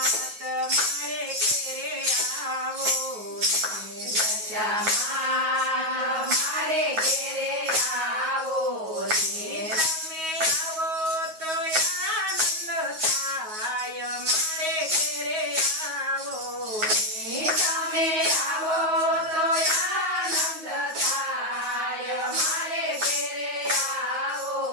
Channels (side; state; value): left; late; 9.4 ms